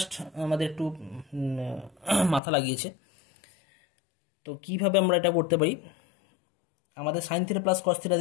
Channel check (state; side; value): drops out; right; at 2.4 s